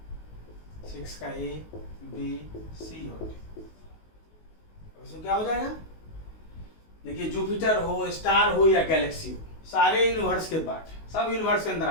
six का ए, बी, सी और डी। इसमें क्या हो जाएगा, देखिए जुपिटर हो, स्टार हो या गैलेक्सी हो, सारे यूनिवर्स के पार्ट, सब यूनिवर्स के अंदर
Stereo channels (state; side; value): late; right; 19 ms